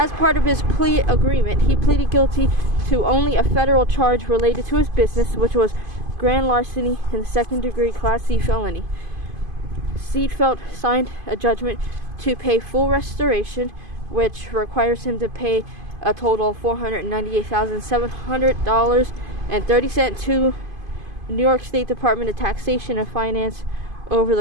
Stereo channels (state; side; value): late; left; 2.5 ms